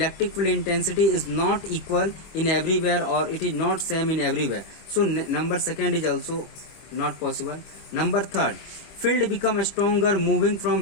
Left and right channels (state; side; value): late; right; 25 ms